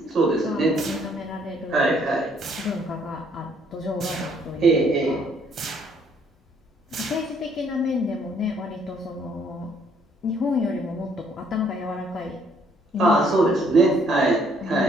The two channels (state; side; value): normal; both; correlation 0.66